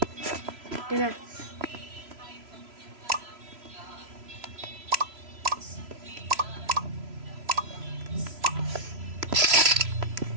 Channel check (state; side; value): late; left; 3.0 ms